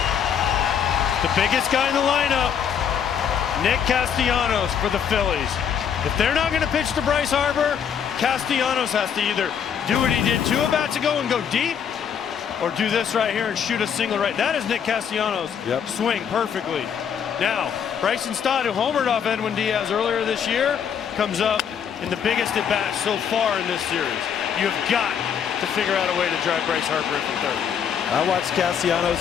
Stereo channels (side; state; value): right; quieter; 8.0 dB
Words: The biggest guy in the lineup, Nick Castellanos for the Phillies. If they're not going to pitch to Bryce Harper, Castellanos has to either do what he did 2 at-bats ago and go deep, or do this right here and shoot a single right. That is Nick Castellanos. Yep. Swing perfectly. Now, Bryson Stott, who homered off Edwin Diaz earlier this year, comes up in the biggest at-bat so far in this series. You have got to figure out a way to drive Bryce Harper into third. I watched